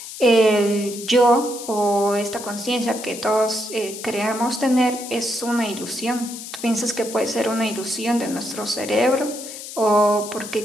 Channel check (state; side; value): noise; left; hiss, 11 dB below the sound